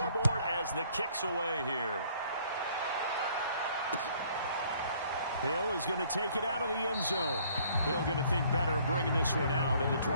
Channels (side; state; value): both; inverted; correlation -0.61